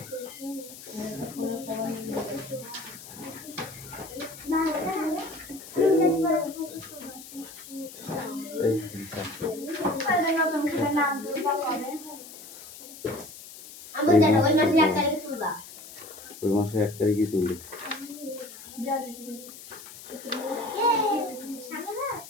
ওই মাসে 1 তারিখে তুলি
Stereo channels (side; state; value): left; noise; hiss, 15 dB below the sound